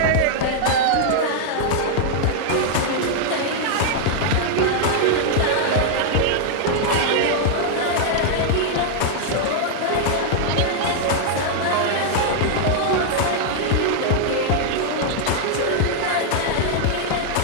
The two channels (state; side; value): different; both; correlation -0.01